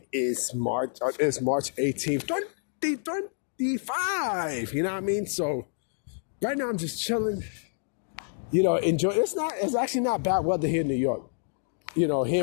is March. It's March 18th, 2025. You know what I mean? So right now I'm just chilling. You know, enjoy. It's actually not bad weather here in New York. You know, here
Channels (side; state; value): right; silent; digital silence